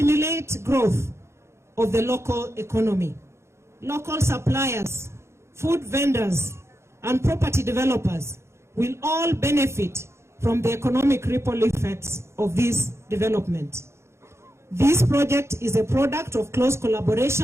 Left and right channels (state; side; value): late; left; 0.13 ms